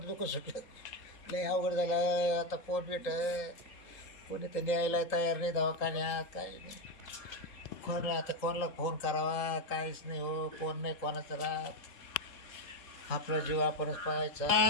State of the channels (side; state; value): right; late; 3.8 ms